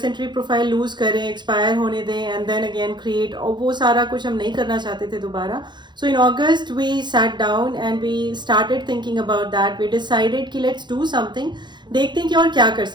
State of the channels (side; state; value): left; late; 0.21 ms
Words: एंट्री प्रोफाइल लूज करें, एक्सपायर होने दें एंड देन अगेन क्रिएट, और वो सारा कुछ हम नहीं करना चाहते थे दोबारा. So in August we sat down and we started thinking about that. We decided कि लेट्स डू समथिंग, देखते हैं कि और क्या कर